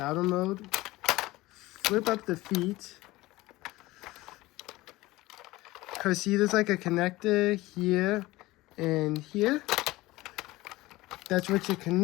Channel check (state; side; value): quieter; right; 19.2 dB